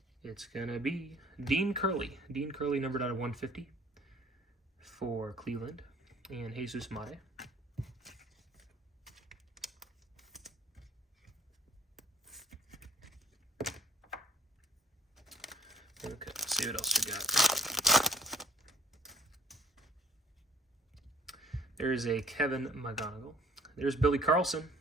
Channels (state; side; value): normal; both; correlation 0.54